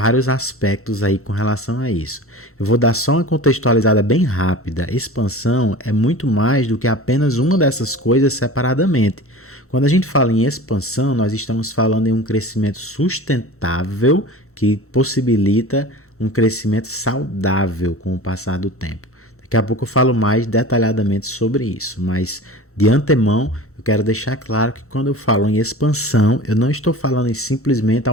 aspectos aí com relação a isso. Eu vou dar só uma contextualizada bem rápida. Expansão é muito mais do que apenas uma dessas coisas separadamente. Quando a gente fala em expansão, nós estamos falando em um crescimento sustentável que possibilita um crescimento saudável com o passar do tempo. Daqui a pouco eu falo mais detalhadamente sobre isso, mas de antemão eu quero deixar claro que quando eu falo em expansão, eu não estou falando em simplesmente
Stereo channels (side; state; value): both; normal; correlation 0.37